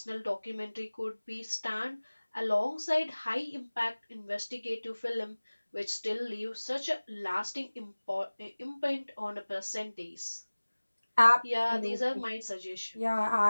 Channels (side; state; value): both; inverted; correlation -1.00